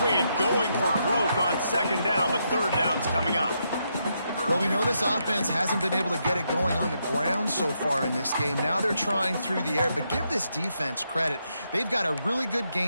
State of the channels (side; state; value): both; inverted; correlation -0.80